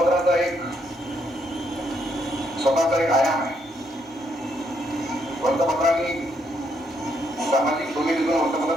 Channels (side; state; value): both; normal; correlation 0.74